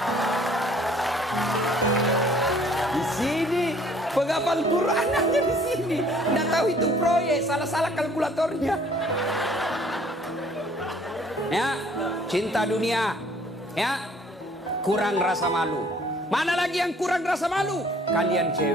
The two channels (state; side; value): normal; both; correlation 0.57